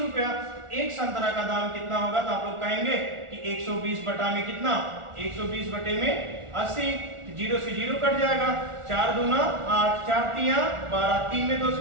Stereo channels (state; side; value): late; left; 1.4 ms